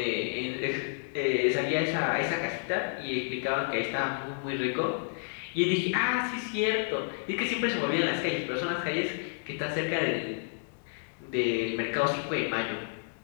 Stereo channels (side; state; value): right; silent; digital silence